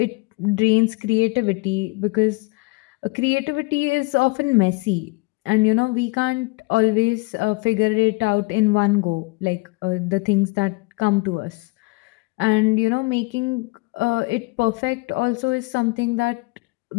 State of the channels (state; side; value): quieter; right; 26.1 dB